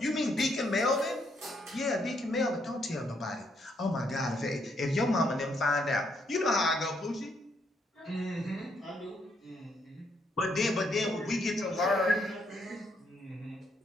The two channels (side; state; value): both; normal; correlation 0.74